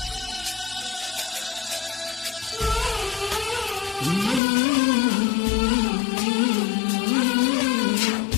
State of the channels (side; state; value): right; drops out; at 4.4 s